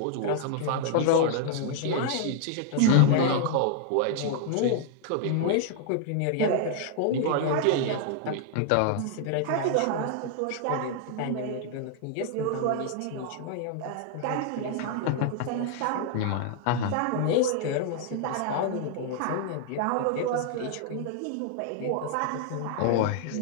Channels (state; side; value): different; both; correlation 0.00